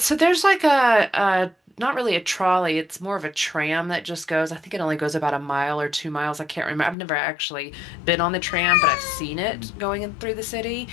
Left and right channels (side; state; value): right; drops out; at 7.0 s